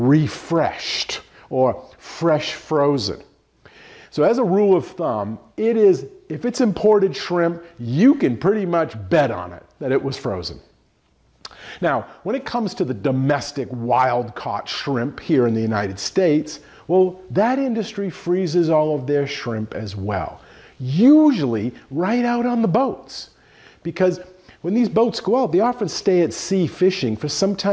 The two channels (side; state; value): both; identical; correlation 1.00